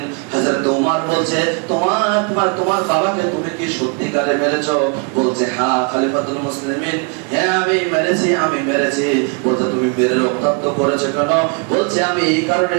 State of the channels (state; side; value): quieter; left; 34.4 dB